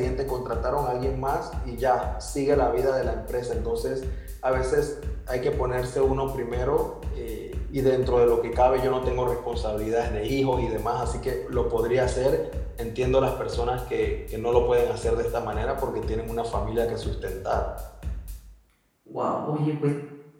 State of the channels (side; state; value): both; identical; correlation 1.00